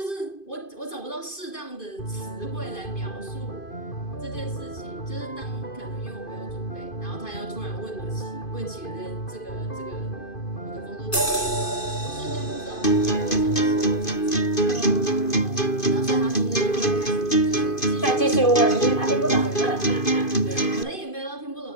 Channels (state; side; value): late; right; 2.5 ms